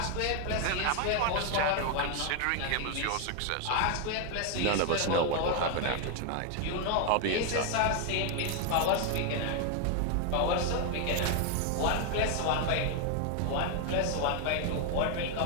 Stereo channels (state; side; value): different; both; correlation 0.00